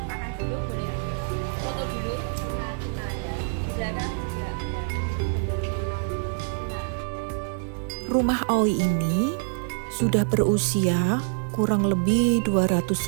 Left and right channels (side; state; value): left; silent; digital silence